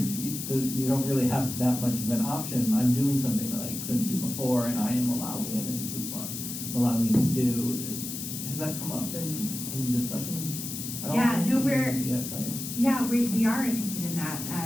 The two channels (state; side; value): noise; left; hiss, 7 dB below the sound